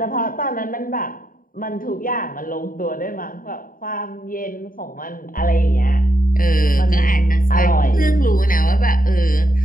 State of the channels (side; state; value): right; late; 0.41 ms